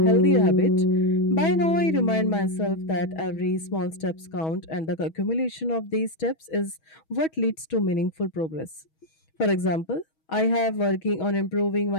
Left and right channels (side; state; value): right; late; 6.2 ms